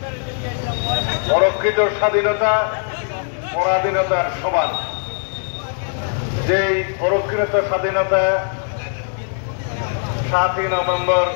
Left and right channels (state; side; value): silent; right; digital silence